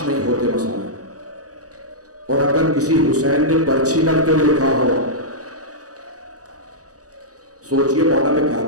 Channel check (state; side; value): late; left; 0.67 ms